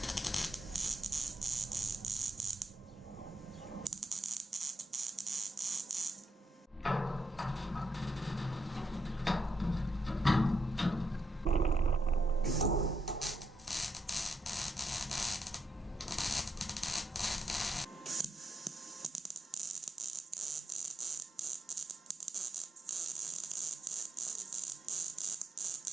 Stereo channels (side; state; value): both; normal; correlation 0.81